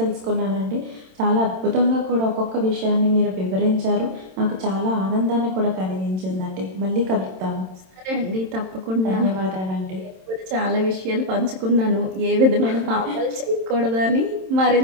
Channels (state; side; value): late; left; 27 ms